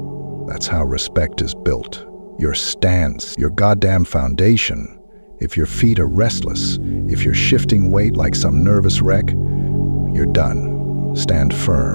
That's how respect is built. Your stance, your goddamn foundation. If your feet are restless, if you're shifting weight like some nervous wreck, you're done. Stand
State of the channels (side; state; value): both; inverted; correlation -1.00